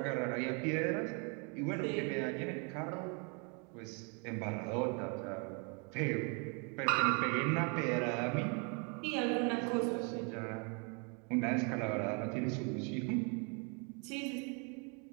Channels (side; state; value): left; quieter; 35.2 dB